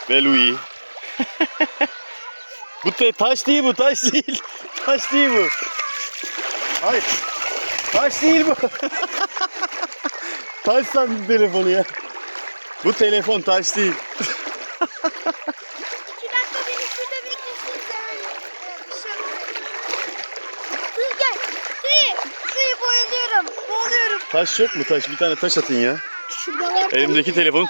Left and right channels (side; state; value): both; inverted; correlation -1.00